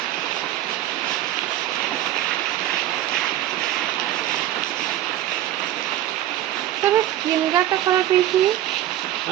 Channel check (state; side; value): quieter; left; 13.3 dB